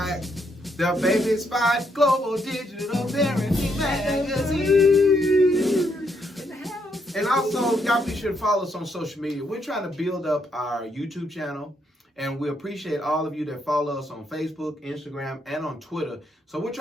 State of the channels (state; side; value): normal; both; correlation 0.75